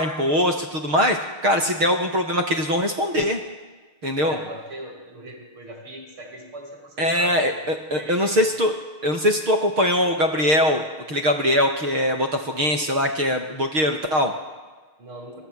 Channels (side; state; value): left; late; 6.5 ms